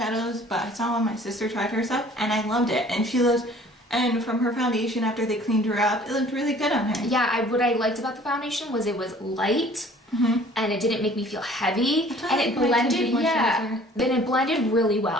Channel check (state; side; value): normal; both; correlation 0.52